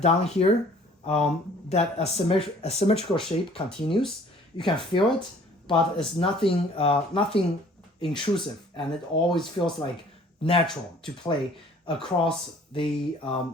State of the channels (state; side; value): normal; both; correlation 0.54